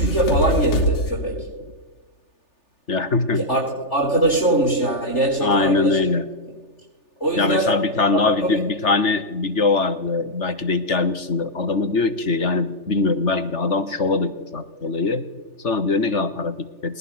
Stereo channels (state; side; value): late; right; 3.4 ms